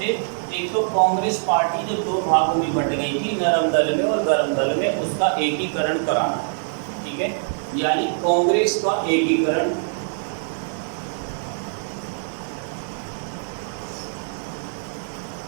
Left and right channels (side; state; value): left; silent; digital silence